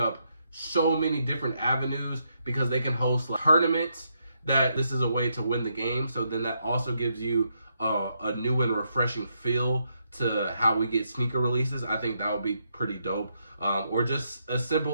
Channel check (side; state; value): both; inverted; correlation -0.79